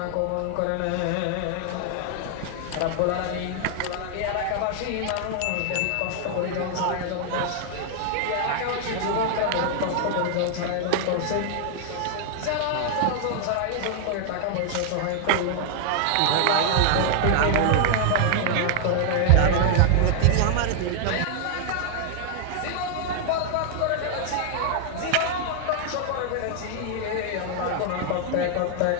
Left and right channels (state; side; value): different; both; correlation 0.00